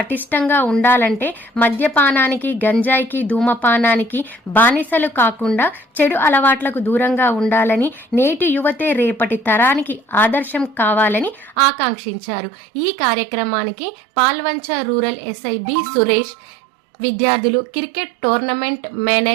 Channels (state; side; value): drops out; left; at 11.6 s